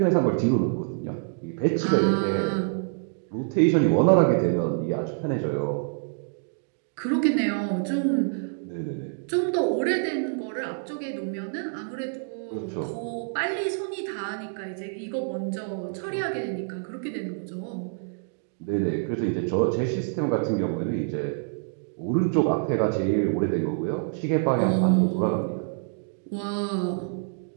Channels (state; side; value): silent; left; digital silence